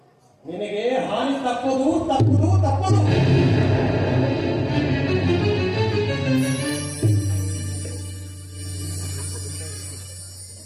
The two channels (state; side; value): identical; both; correlation 1.00